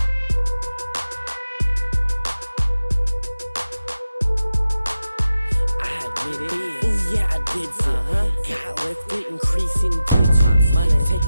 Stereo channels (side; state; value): both; inverted; correlation -0.92